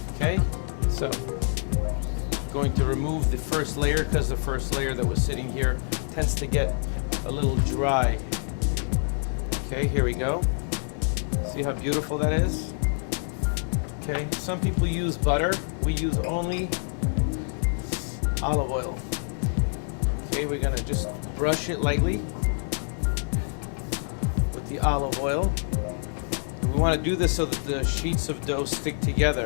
Okay, so going to remove the first layer because the first layer that was sitting here tends to get a little dry. Okay, here we go. See how beautiful that is? Okay, some people use butter. We use only olive oil. Okay, we're gonna just brush it lightly with the olive oil. We want to do this so that the sheets of dough stick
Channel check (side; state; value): right; silent; digital silence